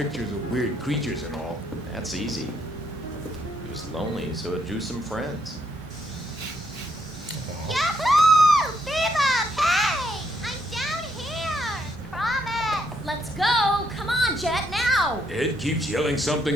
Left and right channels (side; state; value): both; normal; correlation 0.74